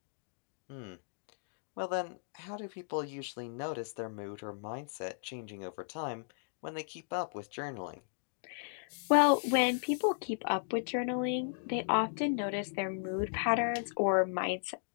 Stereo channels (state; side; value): silent; right; digital silence